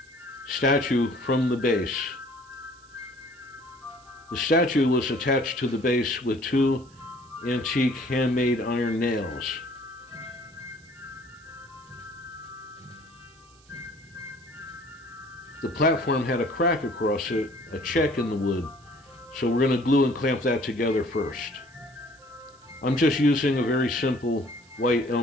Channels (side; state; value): right; noise; hiss, 28 dB below the sound